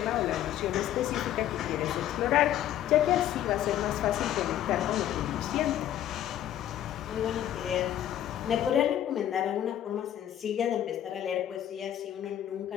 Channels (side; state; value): right; quieter; 11.5 dB